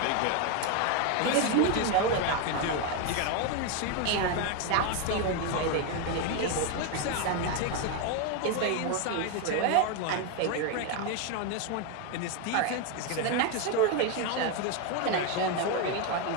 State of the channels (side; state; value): both; different; correlation 0.02